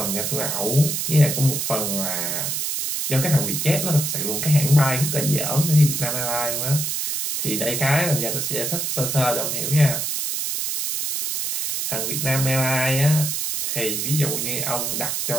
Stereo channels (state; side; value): noise; right; hiss, 1 dB below the sound